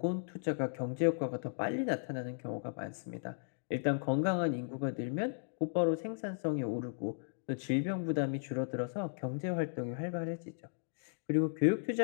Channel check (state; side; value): silent; right; digital silence